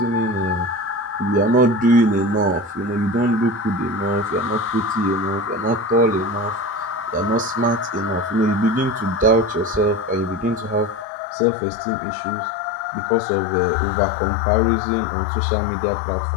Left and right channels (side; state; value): right; drops out; at 11.1 s